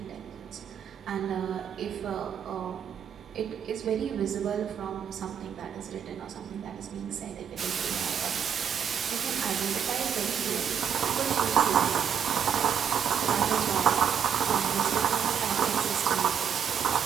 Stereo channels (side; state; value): left; quieter; 8.1 dB